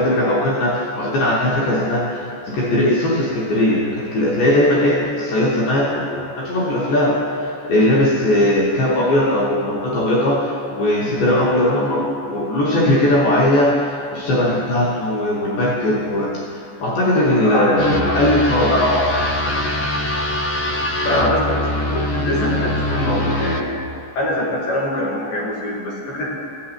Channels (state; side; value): late; right; 14 ms